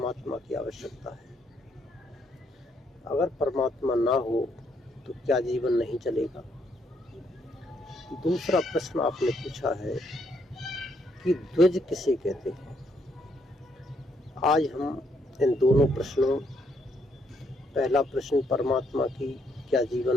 की आवश्यकता है। अगर परमात्मा ना हो तो क्या जीवन नहीं चलेगा। दूसरा प्रश्न आपने पूछा है कि द्विज किसे कहते हैं। आज हम इन दोनों प्रश्नों, पहला प्रश्न परमात्मा की क्या जीवन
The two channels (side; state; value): both; normal; correlation 0.73